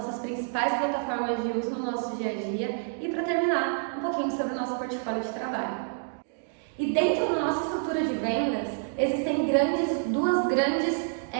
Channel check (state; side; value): silent; left; digital silence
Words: principais plataformas de uso no nosso dia a dia e para terminar um pouquinho sobre o nosso portfólio de trabalho. E dentro da nossa estrutura de vendas existem duas grandes